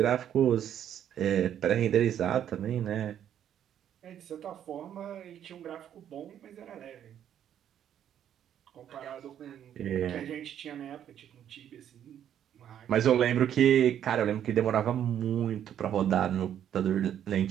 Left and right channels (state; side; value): quieter; left; 10.0 dB